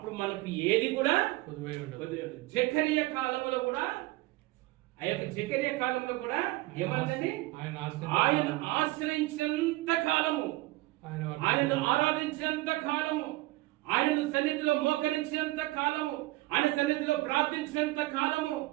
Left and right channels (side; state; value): left; quieter; 19.6 dB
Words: మనకు ఏది కూడా జకరియా కాలంలో కూడా, ఆ యొక్క జకరియా కాలంలో కూడా ఏమన్నది, ఆయన ఆశ్రయించినంత కాలము, ఆయనను ఆరాధించినంత కాలము, ఆయనను సన్నిధిలో మోకరించినంత కాలము, ఆయన సన్నిధిలో ప్రార్థించినంత కాలము,